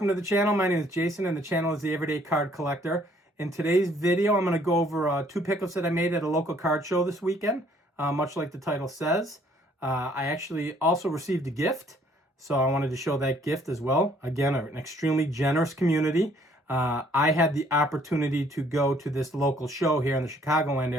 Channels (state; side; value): normal; both; correlation 0.62